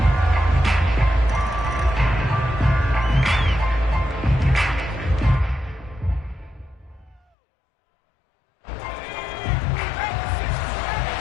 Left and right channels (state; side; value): drops out; right; at 7.2 s